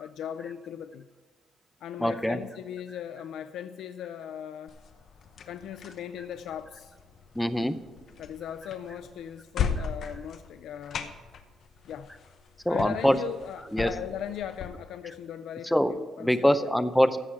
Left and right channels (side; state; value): both; normal; correlation 0.89